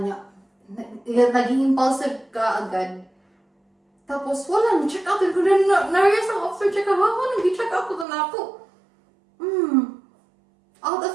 naging impulsive ka agad. Tapos, wala, check out ko na, na-realize ako after check out, nag-check out ko na ako. Out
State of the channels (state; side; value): drops out; left; at 8.1 s